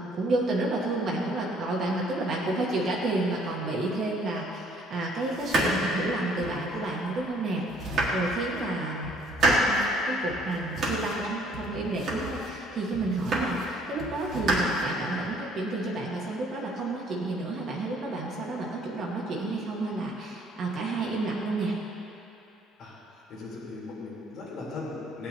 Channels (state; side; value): normal; both; correlation 0.60